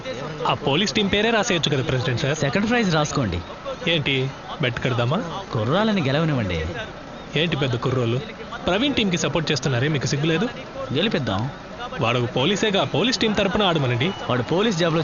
ఆ పోలీస్ టీం పేరే రాసేయచ్చు కదా ప్రెసిడెంట్ సార్. సెకండ్ ప్రైజ్ రాసుకోండి. ఏంటి బెట్ కడదామా? కుర్రాలని గెలవనివ్వండి. ఏంటి పెద్ద కుర్రోళ్ళు ప్రవీణ్ టీంకి సపోర్ట్ చేస్తున్నారే, మీకు సిగ్గులేదు? గెలిపిద్దాం. వాడు పోలీసేగా, పోలీస్ టీం తరపున ఆడమనండి. వాడు పోలీస్ జాబ్ లో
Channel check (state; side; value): identical; both; correlation 1.00